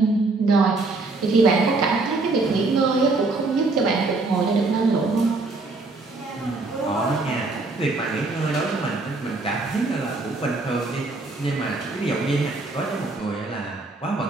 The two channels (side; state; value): left; quieter; 3.5 dB